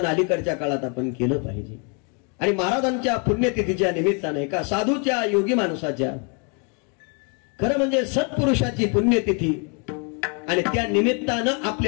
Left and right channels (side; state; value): right; quieter; 36.9 dB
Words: अलीकडच्या काळात आपण केलं पाहिजे. आणि महाराजांच्या पुण्यतिथीच्या निमित्ताने एका साधूच्या योगी माणसाच्या खरं म्हणजे सत्पुरुषाची पुण्यतिथी आणि त्या निमित्तानं